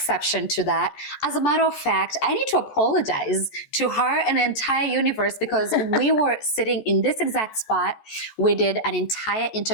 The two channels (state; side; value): late; right; 14 ms